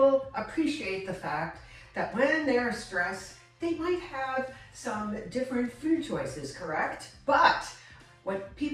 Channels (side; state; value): both; identical; correlation 1.00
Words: appreciate the fact that when they're stressed, they might have some different food choices, correct? But what